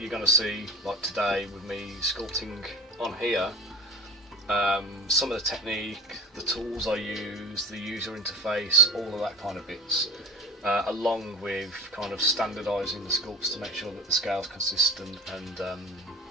going to see like today with me sculpting on here, some of the technique, the tools I use, the user interface, all of that kind of bits, along with kind of standardising the sculpts to make sure that the scale's consistent and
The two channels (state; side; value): normal; both; correlation 0.35